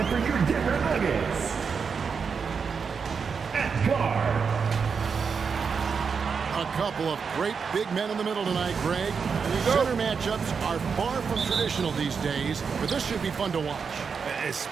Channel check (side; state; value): left; quieter; 5.8 dB